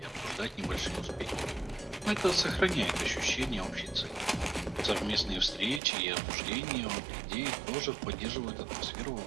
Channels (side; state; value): left; drops out; at 5.8 s